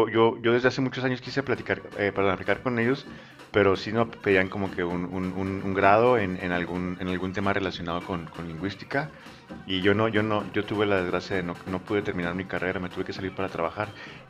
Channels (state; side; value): identical; both; correlation 1.00